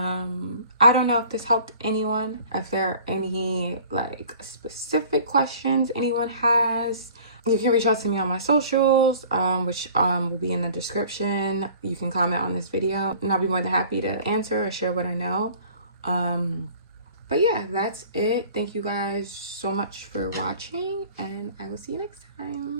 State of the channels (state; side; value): inverted; both; correlation -0.48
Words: don't know if this helped anyone. If there are any like specific questions anyone has, you can reach out to me on my socials, which will be in the description. You can comment on this video and I'll be more than happy to answer or share what I know. But yeah, that's it. Thank you guys so much for watching, and I will see you next